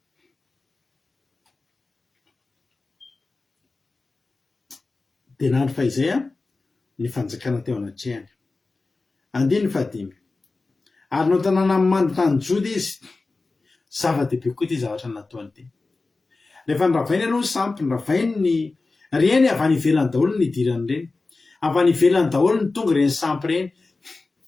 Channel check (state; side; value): quieter; right; 3.6 dB